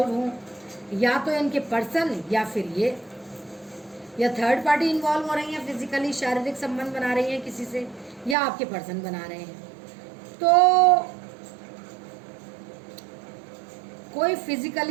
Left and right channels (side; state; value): left; drops out; at 8.3 s